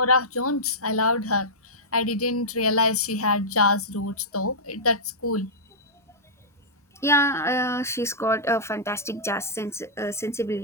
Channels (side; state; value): both; normal; correlation -0.14